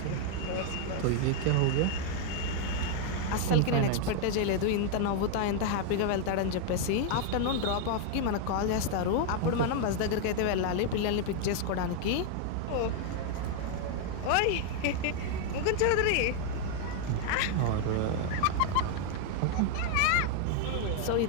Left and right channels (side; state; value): both; different; correlation 0.00